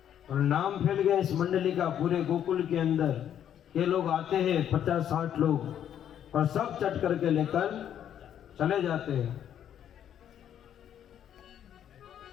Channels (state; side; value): quieter; right; 9.9 dB